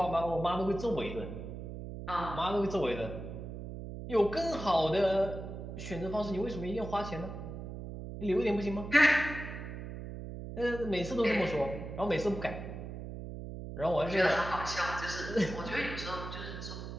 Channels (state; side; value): noise; right; hum, 8 dB below the sound